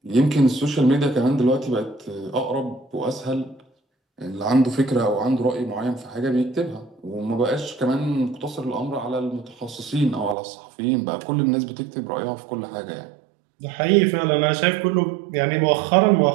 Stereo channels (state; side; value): drops out; left; at 10.4 s